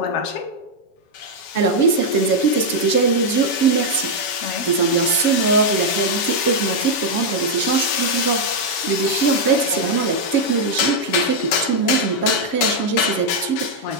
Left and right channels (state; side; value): late; right; 7.3 ms